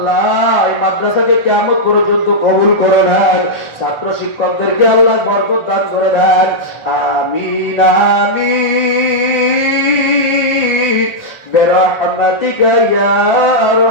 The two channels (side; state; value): right; late; 1.4 ms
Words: এই মাদ্রাসাকে কিয়ামত পর্যন্ত কবুল করে নেন। ছাত্র শিক্ষকদেরকে আল্লাহ বরকত দান করে দেন। আমিন আমিন বিরহমাতিকা ইয়া